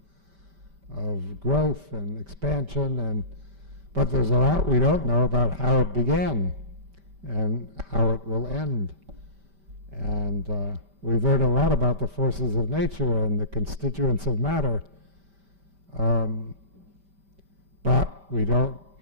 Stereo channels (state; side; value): late; left; 5.1 ms